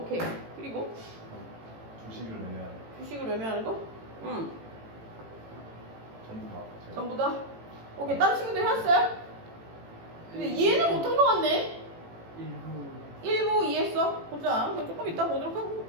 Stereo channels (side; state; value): left; late; 18 ms